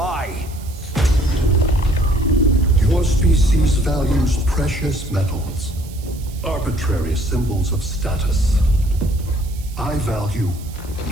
Your species values precious metals, arbitrary symbols of status. I value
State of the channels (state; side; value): noise; right; hiss, 21 dB below the sound